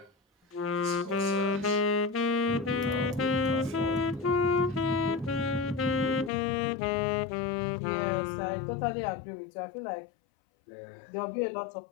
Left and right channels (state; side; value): drops out; right; at 6.3 s